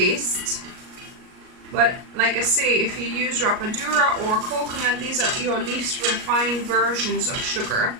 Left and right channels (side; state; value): left; late; 38 ms